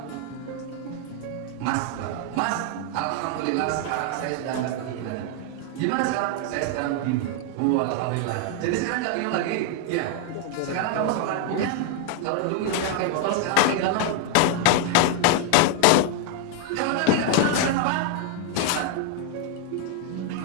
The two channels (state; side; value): different; both; correlation 0.00